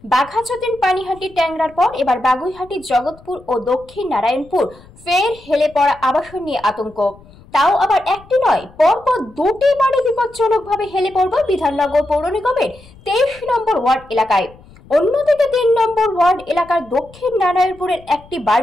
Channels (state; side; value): noise; left; rumble, 24 dB below the sound